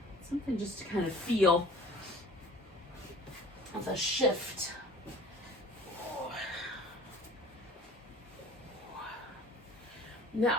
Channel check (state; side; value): normal; both; correlation 0.48